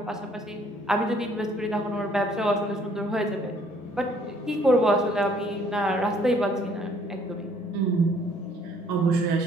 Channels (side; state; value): both; normal; correlation 0.62